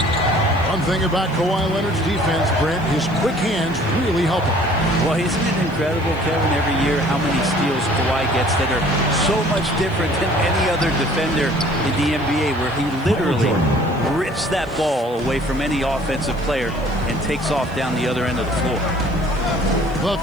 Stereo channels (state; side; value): noise; right; hiss, 27 dB below the sound